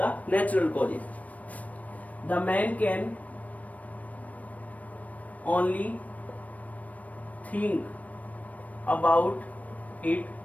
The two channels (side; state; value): right; late; 0.070 ms